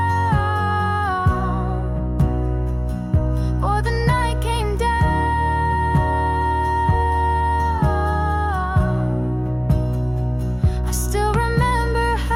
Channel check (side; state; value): both; identical; correlation 1.00